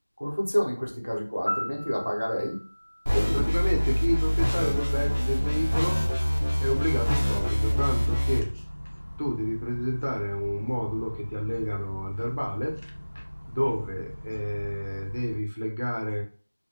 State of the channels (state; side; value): inverted; both; correlation -1.00